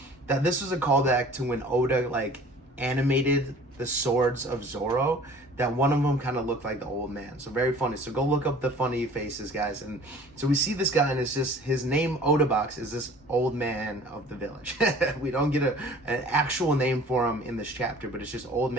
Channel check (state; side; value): normal; both; correlation 0.48